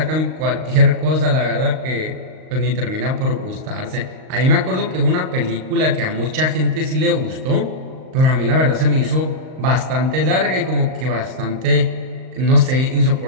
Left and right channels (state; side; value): late; left; 38 ms